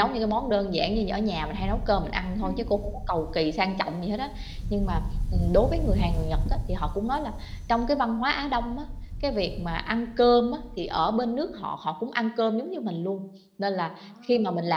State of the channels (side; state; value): both; identical; correlation 1.00